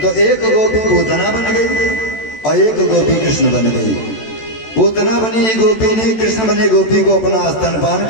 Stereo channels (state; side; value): late; right; 13 ms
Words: तो एक गोपी पूतना बन गई और एक गोपी कृष्ण बन गई। पूतना बनी गोपी ने कृष्ण बने गोपी को अपना स्तनपान